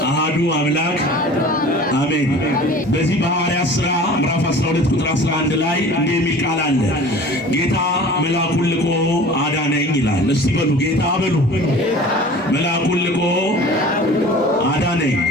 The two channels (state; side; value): normal; both; correlation 0.42